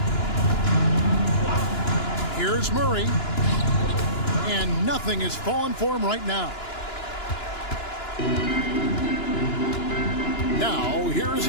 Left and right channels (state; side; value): late; right; 2.9 ms